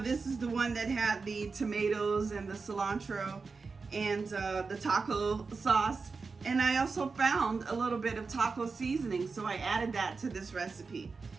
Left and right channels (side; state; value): left; quieter; 4.5 dB